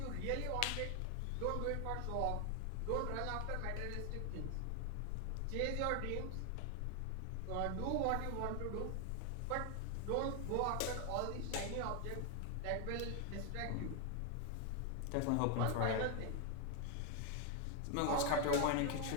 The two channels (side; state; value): both; different; correlation 0.00